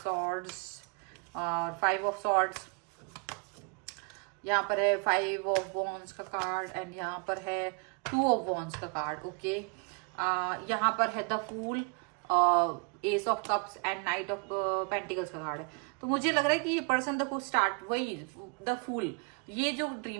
सॉर्ड्स और 5 ऑफ सॉर्ड्स, यहाँ पर है 5 ऑफ वॉन्ड्स का कार्ड, एंड यहाँ पर है 2 ऑफ वॉन्ड्स का कार्ड। ओके, यहाँ पर है the fool, ace of cups and knight of pentacles का कार्ड है। तो मुझे लग रहा है कि ये पर्सन देखो स्टार्ट वही द फूल, ये जो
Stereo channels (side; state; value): left; quieter; 36.7 dB